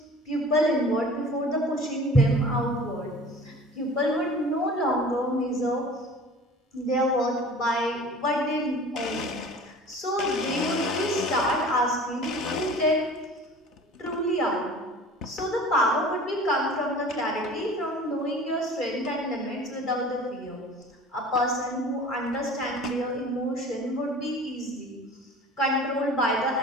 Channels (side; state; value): both; normal; correlation 0.43